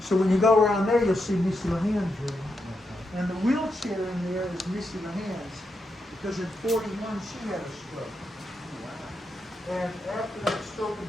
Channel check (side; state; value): both; normal; correlation 0.84